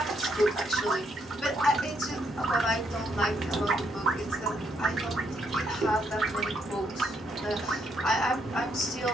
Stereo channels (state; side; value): normal; both; correlation 0.74